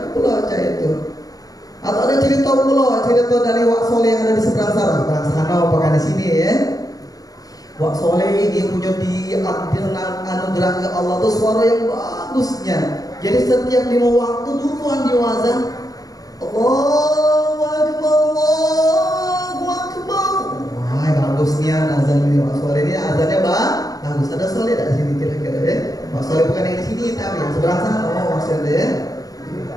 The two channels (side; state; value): right; late; 0.18 ms